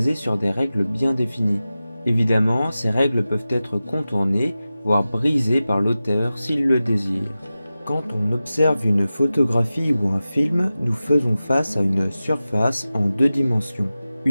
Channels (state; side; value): inverted; both; correlation -0.95